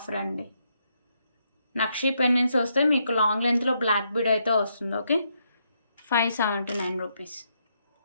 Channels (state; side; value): inverted; both; correlation -0.78